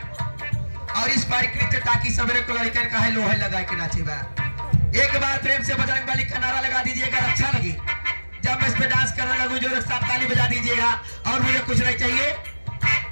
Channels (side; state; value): both; inverted; correlation -1.00